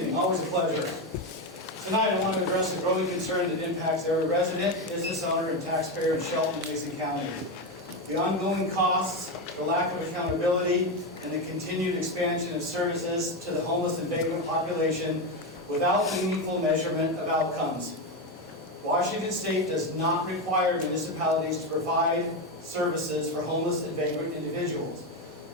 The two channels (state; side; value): normal; both; correlation 0.12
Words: always a pleasure. Tonight I want to address a growing concern that impacts every resident, business owner, and taxpayer in Shelton and Mason County. The ongoing costs, the lack of accountability, and the continued expansion of services to the homeless and vagrant population without meaningful measurement of outcomes. Washington State does not require municipalities to provide services for homeless and vagrant individuals.